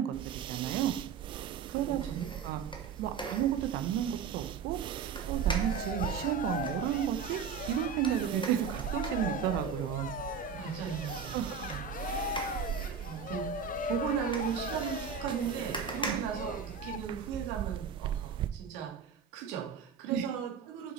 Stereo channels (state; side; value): quieter; left; 6.6 dB